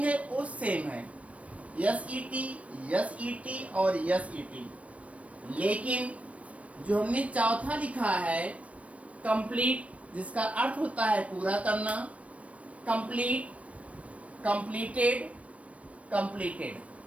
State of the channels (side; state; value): left; late; 0.065 ms